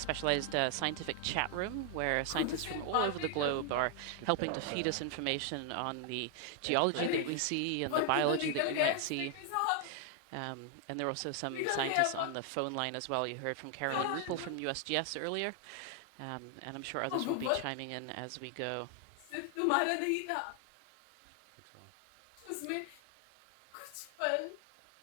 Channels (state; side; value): different; both; correlation 0.00